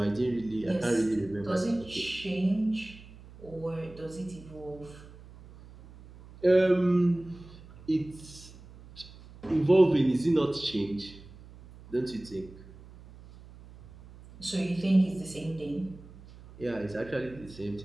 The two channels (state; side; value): noise; right; hum, 20 dB below the sound